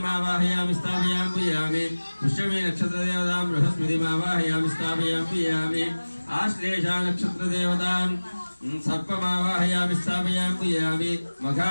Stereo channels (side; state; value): both; inverted; correlation -1.00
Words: స్థాపయామి పూజయామి పుష్యమి నక్షత్ర దేవతాం బృహస్పతిమావాహయామి స్థాపయామి పూజయామి ఆశ్లేషా నక్షత్ర దేవతాం सर्पमावाहयामि स्थापयामि पूजयामि मघा